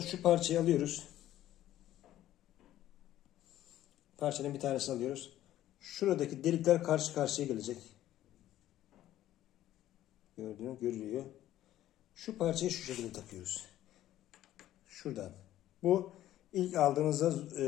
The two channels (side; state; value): right; quieter; 13.4 dB